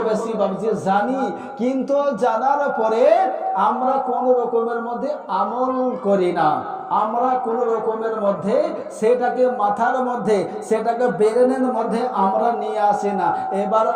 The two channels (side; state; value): both; identical; correlation 1.00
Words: বেশি বাবজি জানি। কিন্তু জানার পরে আমরা কোন রকমের মধ্যে আমল করি না, আমরা কোন রকমের মধ্যে সেটাকে মাথার মধ্যে, সেটাকে ব্রেনের মধ্যে আমরা নিয়ে আসি না। এবার